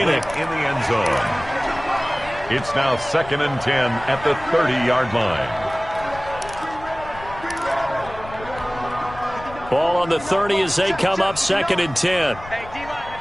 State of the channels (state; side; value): noise; left; rumble, 16 dB below the sound